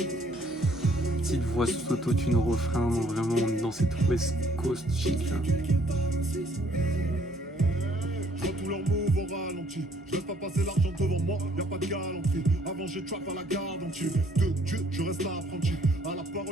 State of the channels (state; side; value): normal; both; correlation 0.63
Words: Petite voix sous autotune au refrain, vraiment on est dans cette West Coast chic là. Je vois tous leurs moves au ralenti. Je laisse pas passer l'argent devant moi, y'a pas de galanterie. Avant j'ai trap à la garde entière. De Dieu, je reste apprenti. À la